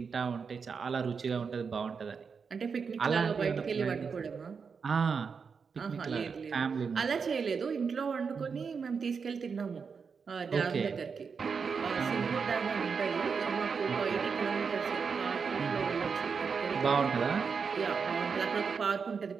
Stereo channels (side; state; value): left; quieter; 5.7 dB